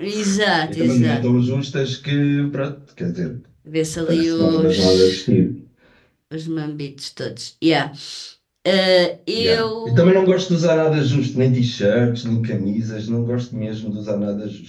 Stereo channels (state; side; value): identical; both; correlation 1.00